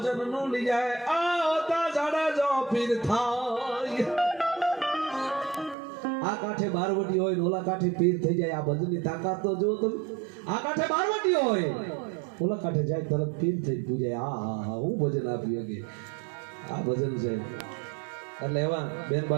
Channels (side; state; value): left; drops out; at 5.8 s